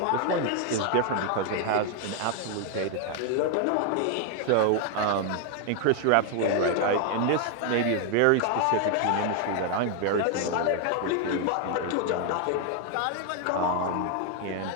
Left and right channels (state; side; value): different; both; correlation 0.00